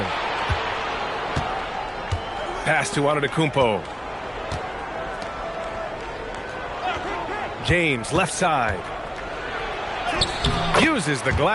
Pass to Antetokounmpo. James, left side. Uses the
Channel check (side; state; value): both; identical; correlation 1.00